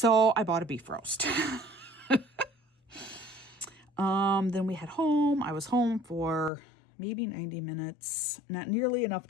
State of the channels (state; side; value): drops out; right; at 6.5 s